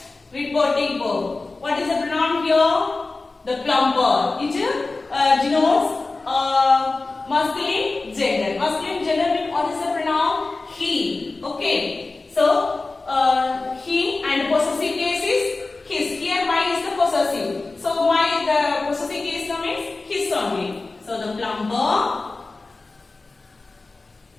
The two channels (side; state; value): right; quieter; 3.5 dB